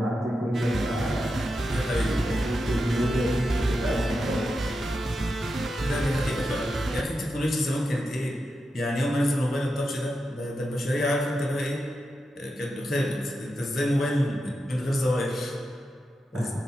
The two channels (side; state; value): both; normal; correlation 0.88